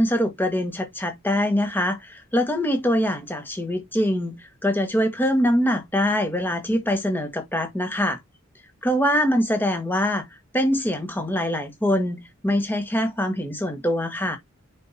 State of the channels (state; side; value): normal; both; correlation 0.75